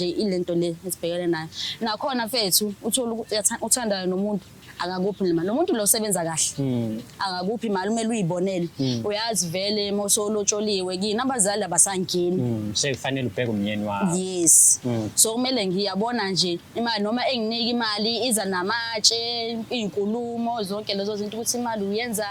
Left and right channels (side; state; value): both; identical; correlation 1.00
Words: ilento le esibhekene nayo. Nakhona mfethu uthola ukuthi uthanda nomuntu akakuphi imali. Lo muntu lo sebenza kahle. Akakuphi imali umele uyibonele. Uyazi vele mosolotsholiwe kini abazali abasangeni. Sekufanele ubheke umnyeni wakho. Yes. So kumele ngiyabona nje imali noma enginika imali iza namatshe, inkulumo zonke lezo zinto ukuthi imali